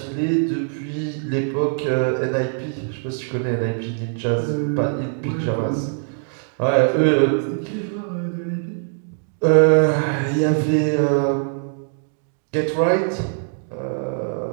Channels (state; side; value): silent; left; 64 dB below the other